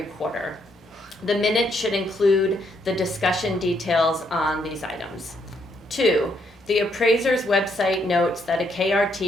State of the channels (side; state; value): both; normal; correlation 0.74